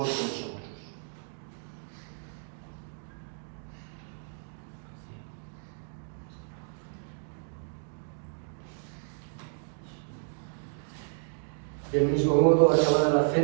vosotros. Del mismo modo, acabada la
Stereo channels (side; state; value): left; silent; digital silence